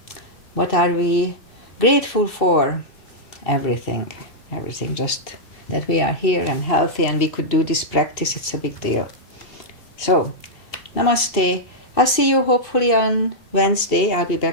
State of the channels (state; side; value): late; right; 2.7 ms